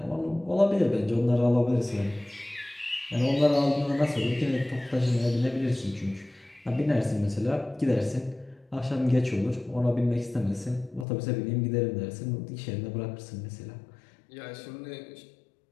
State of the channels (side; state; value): right; drops out; at 11.1 s